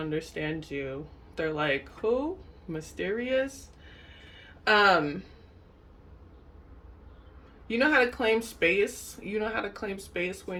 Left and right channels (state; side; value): identical; both; correlation 1.00